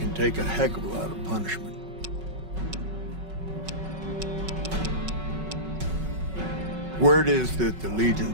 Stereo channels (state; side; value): late; left; 5.3 ms